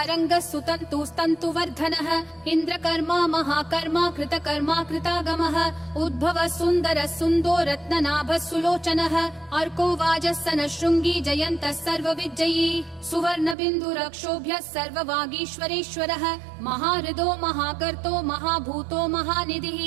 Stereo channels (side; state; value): left; drops out; at 13.6 s